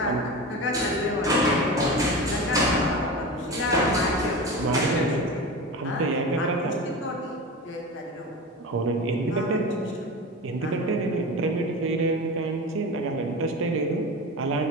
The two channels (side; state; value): both; normal; correlation 0.28